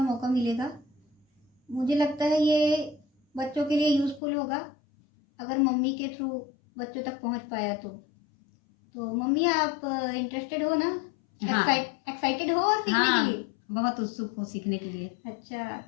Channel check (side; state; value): right; drops out; at 4.2 s